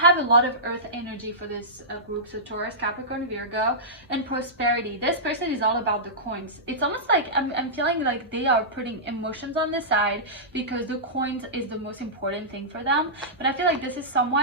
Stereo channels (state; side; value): normal; both; correlation -0.16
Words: a lot of earth energy for this group. So Taurus, Capricorn, Virgo, and prosperity. This person is all about the coins. It's almost like I'm feeling like they are putting emotions on the side, because the coins is the most important thing for them. But I feel like this is